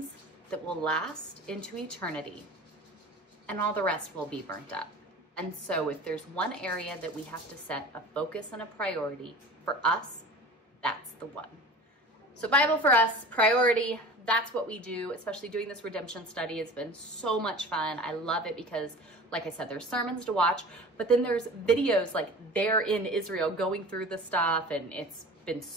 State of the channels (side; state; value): both; normal; correlation 0.39